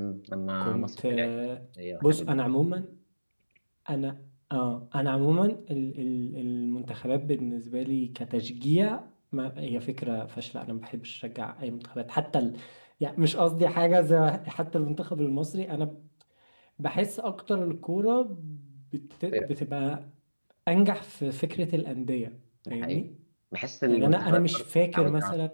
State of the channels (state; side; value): inverted; both; correlation -1.00